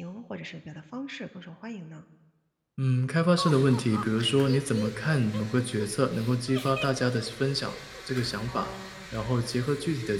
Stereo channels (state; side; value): identical; both; correlation 1.00